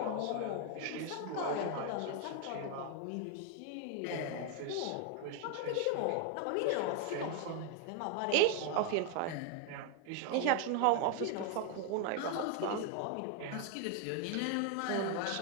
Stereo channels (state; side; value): different; both; correlation 0.01